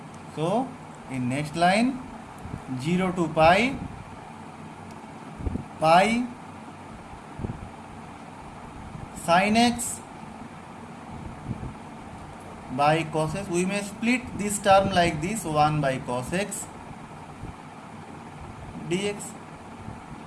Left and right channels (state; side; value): identical; both; correlation 1.00